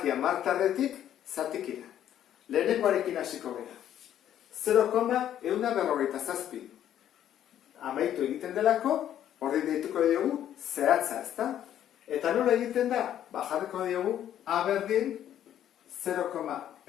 hamartarretik zatikira. Lehenengoarekin hasiko gara. 0,157. Amaitu egiten delako, horri deituko diogu zehatza, ezta? Eta nola egiten da? Jarriko diogu A berdin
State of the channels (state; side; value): quieter; right; 10.9 dB